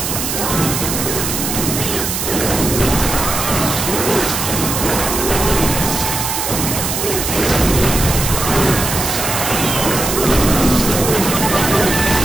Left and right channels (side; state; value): right; noise; hiss, 2 dB below the sound